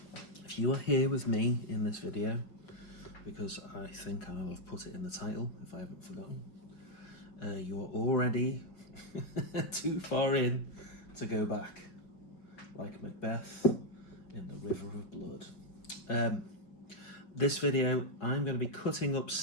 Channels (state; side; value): late; right; 4.9 ms